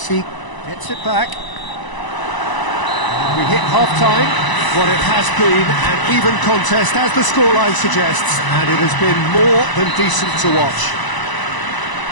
gets it back. And we hit half-time. What it has been an even contest, as the scoreline suggests, and it has been more than decent to watch.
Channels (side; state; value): right; late; 1.0 ms